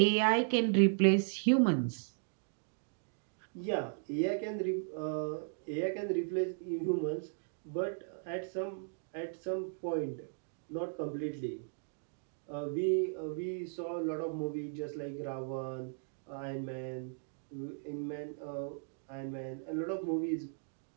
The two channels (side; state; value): left; silent; digital silence